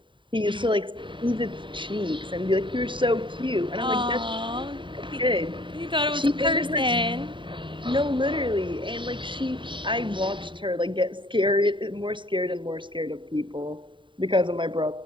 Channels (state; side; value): late; left; 0.24 ms